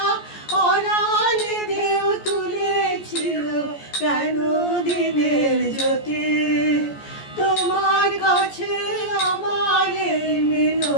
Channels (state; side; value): late; right; 14 ms